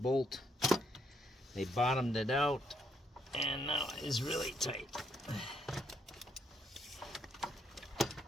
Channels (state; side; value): normal; both; correlation 0.73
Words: They bottomed it out and now it is really tight.